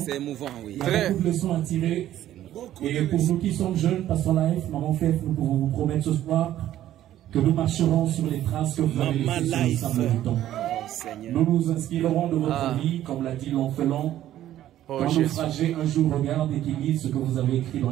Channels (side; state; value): left; quieter; 12.7 dB